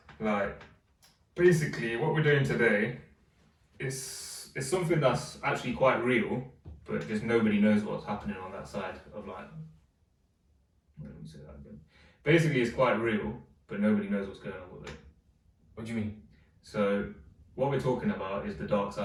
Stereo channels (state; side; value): identical; both; correlation 1.00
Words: Like, basically, what we're doing today is something that's actually quite real, but just nobody knows what's happening on that side of like. Let me say that again. Basically, it's quite real, but nobody knows what's going on with it. What do you mean? So, what we're talking about is the dark